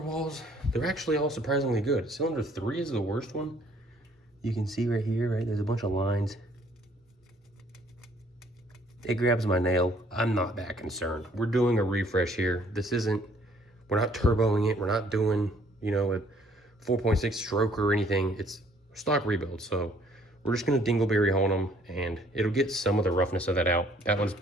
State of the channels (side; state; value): both; normal; correlation 0.61